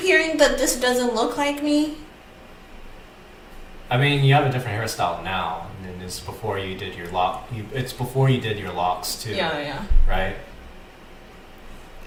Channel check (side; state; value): both; identical; correlation 1.00